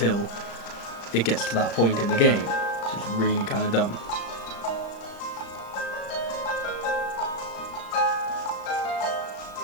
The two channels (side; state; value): right; late; 35 ms